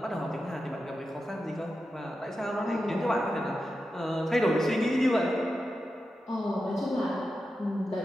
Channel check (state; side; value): normal; both; correlation 0.90